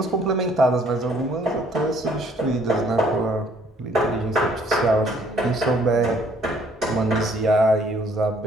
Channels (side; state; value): both; normal; correlation 0.62